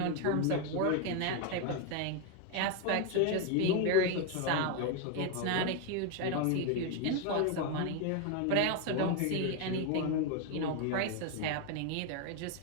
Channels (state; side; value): different; both; correlation 0.01